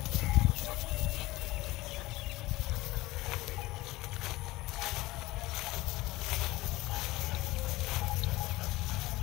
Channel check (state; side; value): quieter; right; 19.5 dB